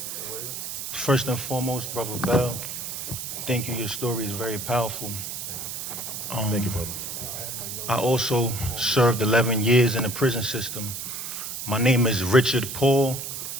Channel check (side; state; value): right; noise; hiss, 6 dB below the sound